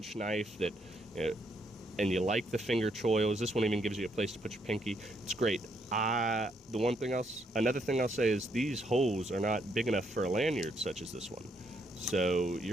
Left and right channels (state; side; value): normal; both; correlation 0.74